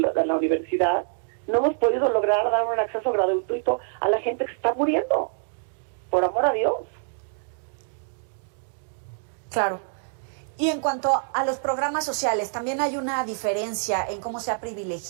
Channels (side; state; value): left; silent; digital silence